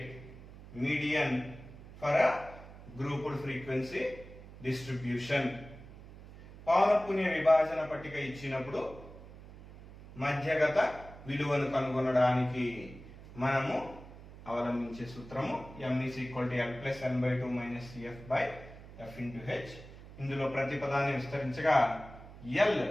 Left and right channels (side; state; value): right; noise; hum, 17 dB below the sound